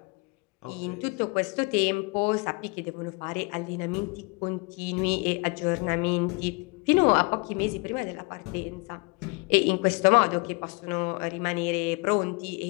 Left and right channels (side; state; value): right; quieter; 29.6 dB